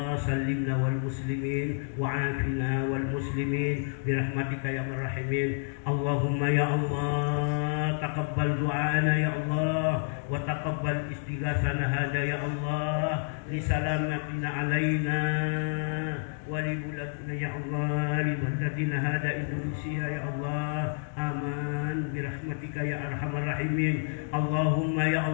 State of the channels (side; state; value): right; silent; 58 dB below the other